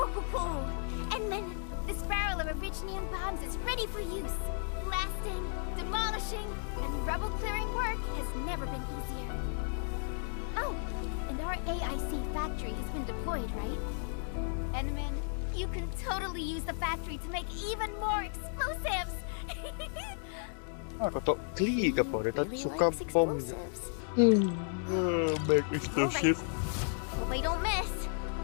ho ho! And then this barrel of originium bombs is ready for use. Blasting, demolishing, and rubble clearing work has never been easier. Oh, and our AIC factory has been deployed, right? Enman, you can totally use the factory to make even more explosives! Ako to kli ka po. Ito Really suka likes bomb. explosives. Make explosive. Hope I don't miss.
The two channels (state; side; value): silent; right; 55 dB below the other